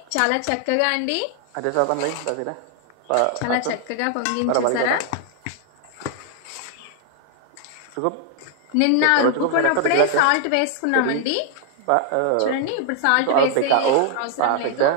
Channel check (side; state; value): both; different; correlation 0.00